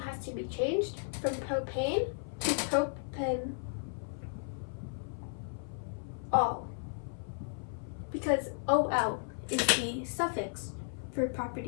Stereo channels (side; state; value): right; silent; 55 dB below the other